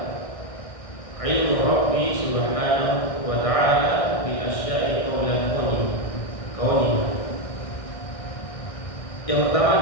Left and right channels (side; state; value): right; late; 1.6 ms